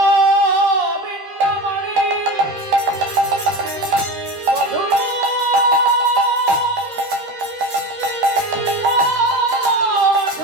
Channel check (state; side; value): late; left; 13 ms